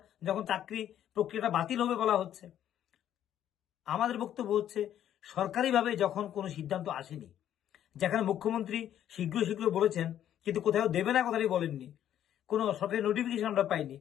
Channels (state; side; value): quieter; right; 10.8 dB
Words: যখন চাকরি প্রক্রিয়াটা বাতিল হবে বলা হচ্ছে। আমাদের বক্তব্য হচ্ছে সরকারিভাবে যখন কোনো সিদ্ধান্ত আসেনি, যেখানে মুখ্যমন্ত্রী শীঘ্র বলেছেন কিন্তু কোথাও দেবে না কথাটি বলেননি, কোনো সরকারি নোটিফিকেশন আমরা পাইনি,